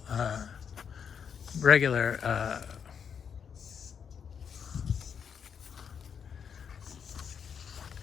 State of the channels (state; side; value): quieter; right; 7.2 dB